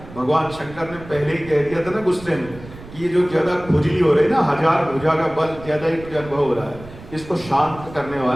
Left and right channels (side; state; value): right; noise; rumble, 17 dB below the sound